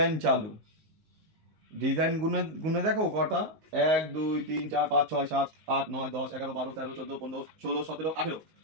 চালু, ডিজাইন গুনে গুনে দেখো কটা, 1 2 3 4 5 6 7 8 9 10 11 12 13 14 15 16 17 18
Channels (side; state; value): left; late; 19 ms